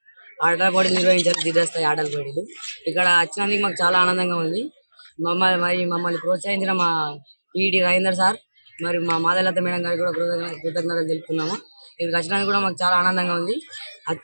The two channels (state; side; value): inverted; both; correlation -1.00